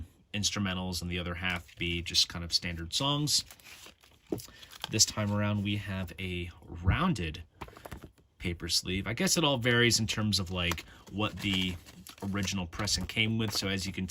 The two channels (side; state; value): both; identical; correlation 1.00